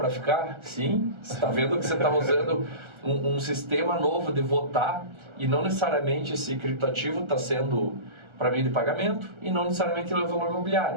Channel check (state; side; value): late; left; 1.4 ms